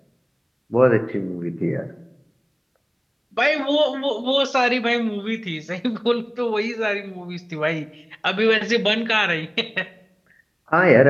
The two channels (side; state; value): both; identical; correlation 1.00